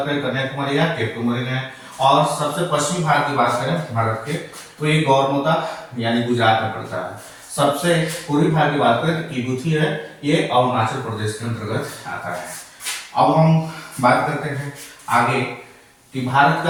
करें कन्याकुमारी या केप केमोरे है, और सबसे पश्चिमी भाग की बात करें भारत के तो ये गौरमोता यानी गुजरात में पड़ता है। सबसे पूर्वी भाग की बात करें तो किबूथी है, ये अरुणाचल प्रदेश के अंतर्गत आता है। अब हम बात करते हैं आगे कि भारत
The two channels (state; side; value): identical; both; correlation 1.00